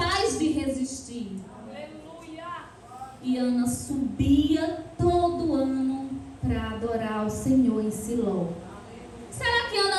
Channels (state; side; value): identical; both; correlation 1.00